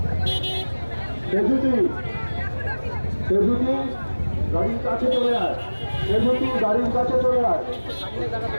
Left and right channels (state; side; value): inverted; both; correlation -1.00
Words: গাড়ির কাছে চলে আয়, গাড়ির কাছে চলে আয়।